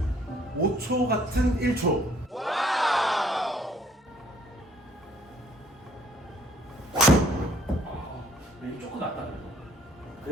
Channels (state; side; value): normal; both; correlation 0.61